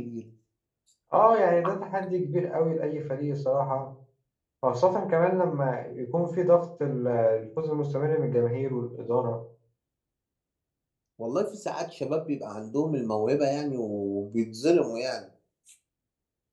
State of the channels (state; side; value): identical; both; correlation 1.00